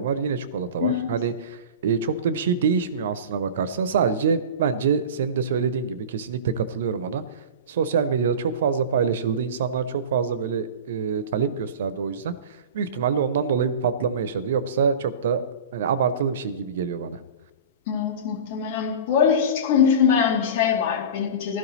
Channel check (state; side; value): inverted; both; correlation -0.32